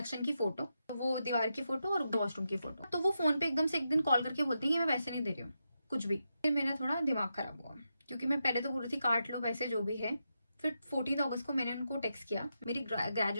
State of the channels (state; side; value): inverted; both; correlation -0.86